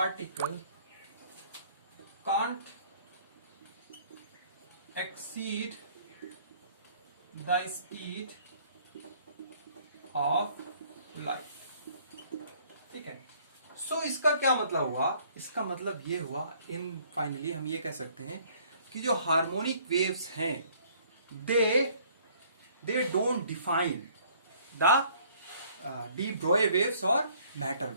can't exceed the speed of light। ठीक है, सो इसका क्या मतलब हुआ? इसका मतलब ये हुआ, इन फाइनली हम ये कह सकते हैं कि जो हार्मोनिक वेव्स हैं they don't define the de Broglie waves और matter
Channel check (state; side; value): inverted; both; correlation -0.59